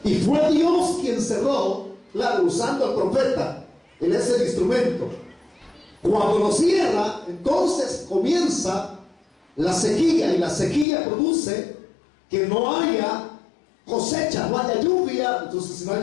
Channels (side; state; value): right; drops out; at 10.9 s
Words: Y fue Dios quien cerró, claro, usando al profeta. Él es el instrumento. Cuando lo cierra, entonces comienza la sequía, y la sequía produce que no haya cosecha, no haya lluvia. Entonces, si no hay